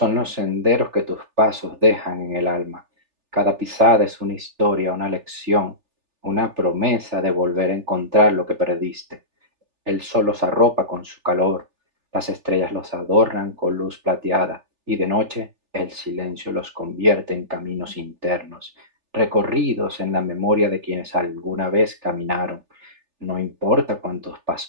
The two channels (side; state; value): left; late; 3.4 ms